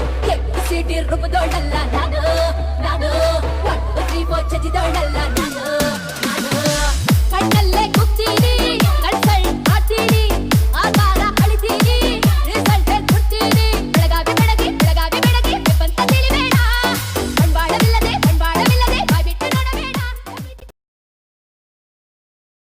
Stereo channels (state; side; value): identical; both; correlation 1.00